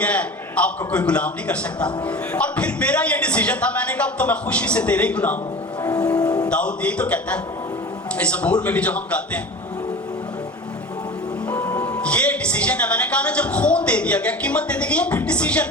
ہے، آپ کو کوئی غلام نہیں کر سکتا. اور پھر میرا یہ ڈیسیجن تھا، میں نے کہا اب تو میں خوشی سے تیرے ہی غلام ہوں. داؤد یہی تو کہتا ہے اس زبور میں بھی جو ہم گاتے ہیں، یہ ڈیسیجن ہے. میں نے کہا نا جب خون دے دیا گیا، قیمت دے دی گئی، پھر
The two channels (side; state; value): both; normal; correlation 0.35